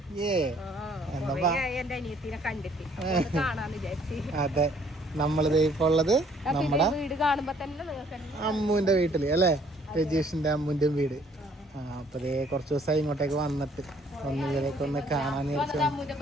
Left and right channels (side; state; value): both; normal; correlation 0.62